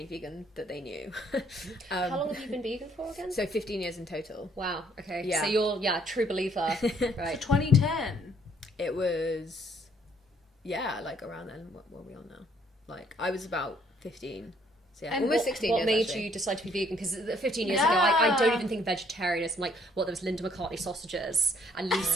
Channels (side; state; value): both; normal; correlation 0.65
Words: vegan that they knew. How long have you been vegan for again? So 15 years in total. Wow. Okay. Yeah. So you're true believer. Right. So 2010. It was, like around then. What were we on now? Like, I was about 15. So and almost 16 years. What made actually. you decide to be vegan? Because 15 years ago, I don't even think vegetarianism, like, there was Linda McCartney sausages and